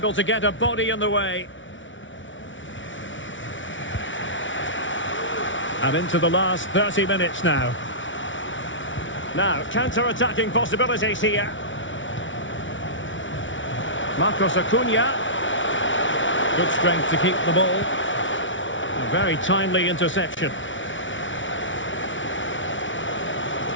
to get a body in the way. And into the last 30 minutes now. Now, counter-attacking possibilities here. Marcos Acuna. Good strength to keep the ball. A very timely interception.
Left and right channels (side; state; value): right; late; 0.56 ms